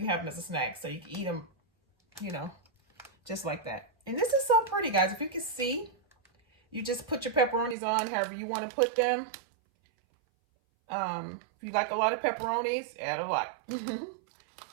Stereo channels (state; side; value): drops out; left; at 7.8 s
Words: have them as a snack. So you can eat them, you know, just like that. And this is so pretty, guys. If you can see, you just put your pepperonis on however you want to put them. If you like a lot of pepperonis, add a lot.